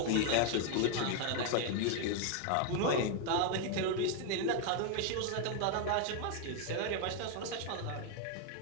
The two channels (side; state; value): both; different; correlation 0.01